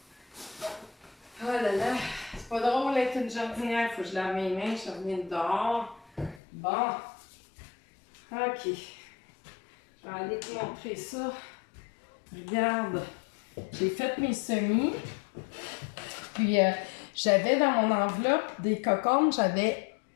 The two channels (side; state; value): right; drops out; at 6.4 s